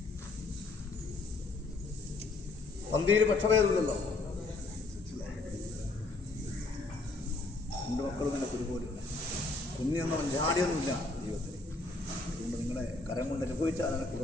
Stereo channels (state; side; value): quieter; right; 3.2 dB